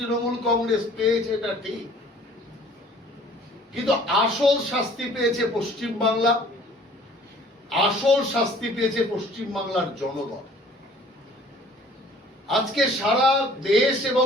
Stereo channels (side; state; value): both; normal; correlation 0.53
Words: কংগ্রেস পেয়েছে, এটা ঠিক, কিন্তু আসল শাস্তি পেয়েছে পশ্চিম বাংলা, আসল শাস্তি পেয়েছে পশ্চিম বাংলার জনগণ। আজকে সারা দেশ